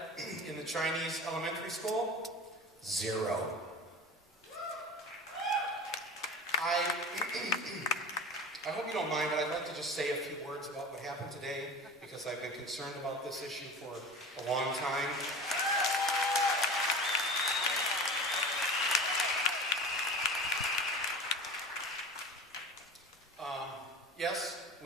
in the Chinese elementary school? 0. I hope you don't mind, but I'd like to just say a few words about what happened today, because I've been concerned about this issue for a long time. Yes,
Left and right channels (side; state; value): both; normal; correlation 0.35